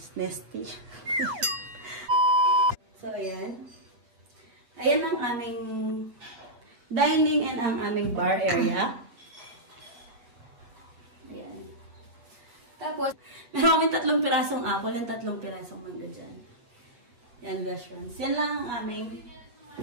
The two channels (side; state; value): left; late; 8.3 ms